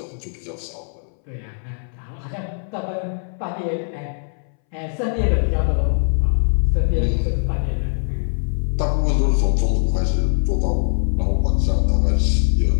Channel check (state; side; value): silent; right; 63 dB below the other